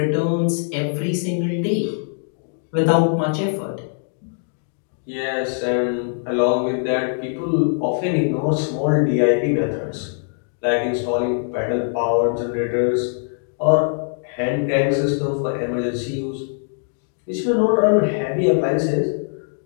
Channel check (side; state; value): right; silent; 64 dB below the other